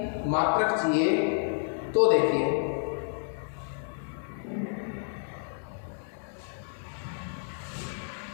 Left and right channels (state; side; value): silent; right; 58 dB below the other